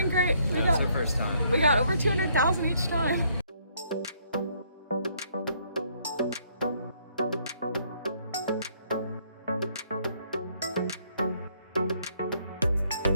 great. That's our first time. We got over 200,000 each time.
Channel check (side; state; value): both; inverted; correlation -0.68